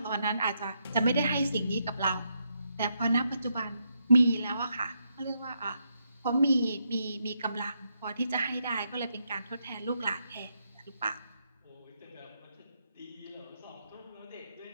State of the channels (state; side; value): inverted; both; correlation -0.80